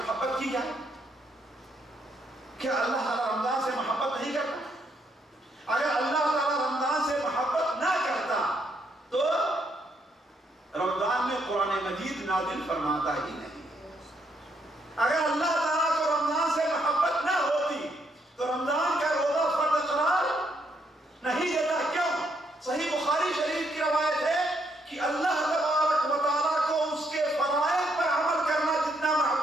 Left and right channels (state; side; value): normal; both; correlation 0.74